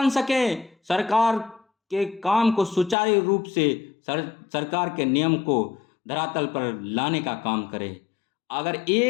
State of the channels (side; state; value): right; drops out; at 3.0 s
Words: सकें, सरकार के काम को सुचारू रूप से सरकार के नियम को धरातल पर लाने का काम करें। अगर